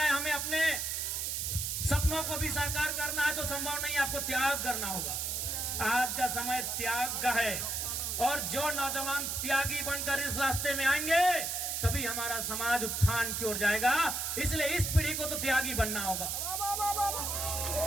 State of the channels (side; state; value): right; noise; hiss, 1 dB below the sound